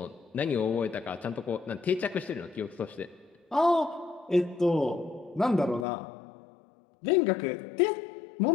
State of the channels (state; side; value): drops out; right; at 5.9 s